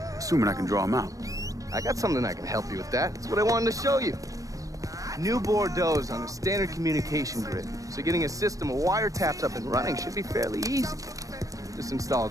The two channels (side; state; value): left; late; 0.16 ms